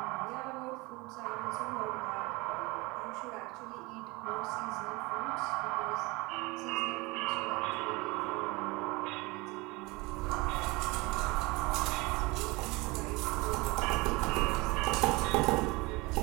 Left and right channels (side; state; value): left; quieter; 24.2 dB